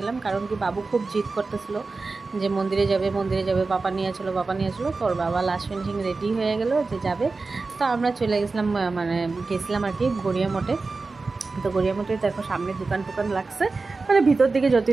গেলাম, কারণ কি বাবু খুব জিদ করতেছিল যে মন্দিরে যাবে মন্দিরে যাবে, বাবা নিয়ে চলো বাবা নিয়ে চলো। তো ওর বাবা লাস্ট ফিনিশিং রেডি হয়ে গেল যে যাবে। তো আমরা চলে গেছিলাম, মানে গেছিলাম আর কি গড়িয়া মঠে। তো গড়িয়া মঠে দেখো সামনে দোকান টোকান লাগছে, মানে ভিতর দিকে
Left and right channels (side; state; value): left; quieter; 3.9 dB